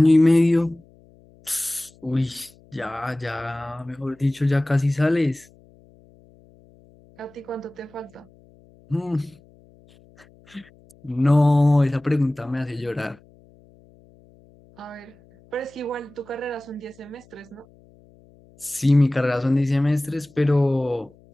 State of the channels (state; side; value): noise; left; hum, 28 dB below the sound